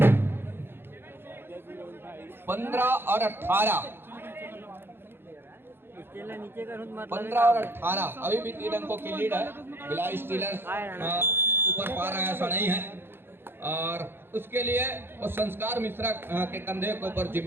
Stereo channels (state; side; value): late; left; 0.11 ms